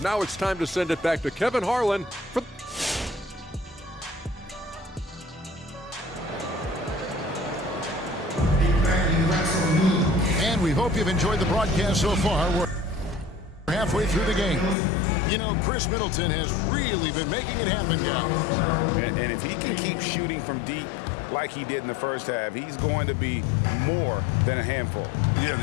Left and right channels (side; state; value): right; drops out; at 14.8 s